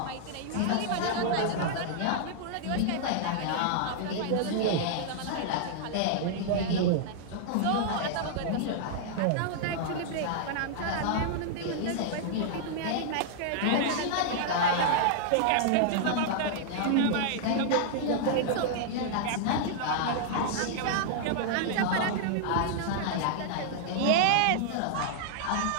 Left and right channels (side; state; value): both; different; correlation -0.01